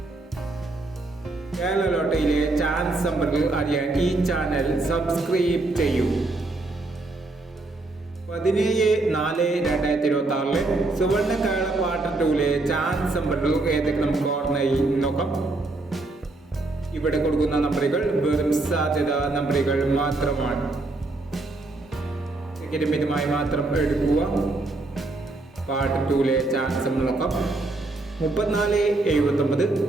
കേരള ലോട്ടറിയിലെ ചാൻസ് നമ്പറുകൾ അറിയാൻ ഈ ചാനൽ സബ്സ്ക്രൈബ് ചെയ്യൂ. 17/4/2026 സുവർണ കേരള പാർട്ട് 2ലെ ചാൻസ് നമ്പറുകൾ ഏതൊക്കെ നമുക്ക് ഓർമ്മയായി നോക്കാം. ഇവിടെ കൊടുക്കുന്ന നമ്പറുകൾ വെറും സാധ്യത നമ്പറുകൾ മാത്രമാണ്. മിതമായി മാത്രം എടുക്കുക. പാർട്ട് 2ലെ ചാൻസ് നമ്മൾ നോക്കാം. 3479, 4129,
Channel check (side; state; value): left; quieter; 3.1 dB